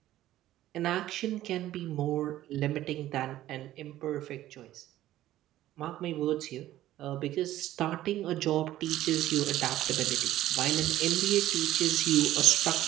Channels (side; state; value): left; quieter; 14.1 dB